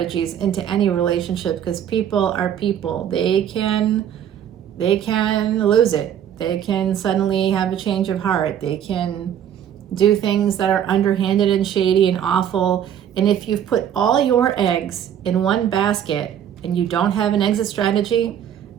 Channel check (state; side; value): quieter; left; 9.7 dB